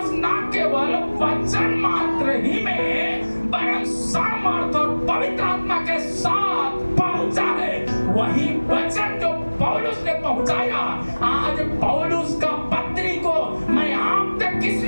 ना केवल वचन मात्र ही में, वरन सामर्थ और पवित्र आत्मा के साथ पहुंचा है। वही वचन जो पौलुस ने पहुंचाया, आज पौलुस का पत्री को मैं आप तक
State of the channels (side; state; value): both; inverted; correlation -1.00